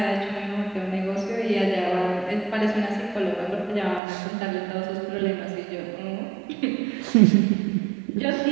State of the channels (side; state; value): left; drops out; at 4.0 s